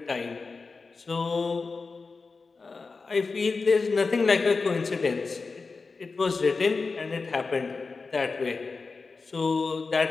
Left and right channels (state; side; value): quieter; right; 4.3 dB